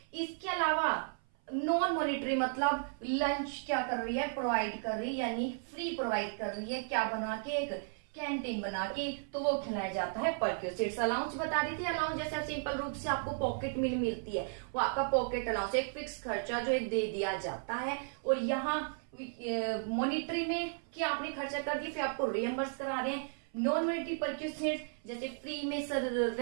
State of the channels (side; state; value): left; silent; 55 dB below the other